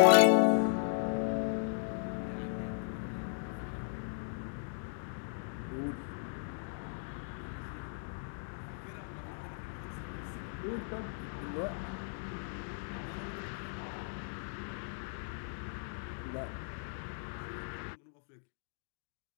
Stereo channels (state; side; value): silent; right; digital silence